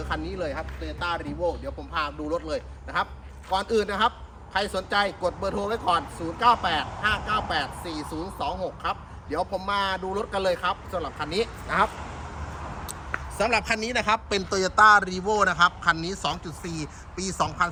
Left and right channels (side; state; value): both; identical; correlation 1.00